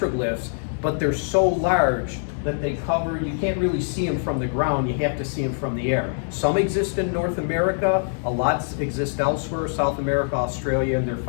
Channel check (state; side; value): silent; right; digital silence